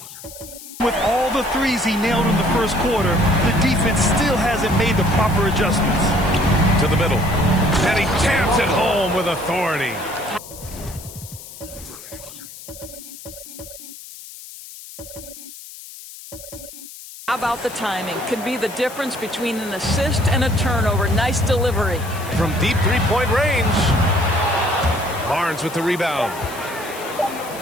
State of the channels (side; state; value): left; noise; hiss, 15 dB below the sound